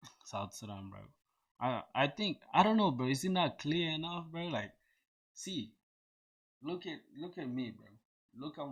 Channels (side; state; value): both; identical; correlation 1.00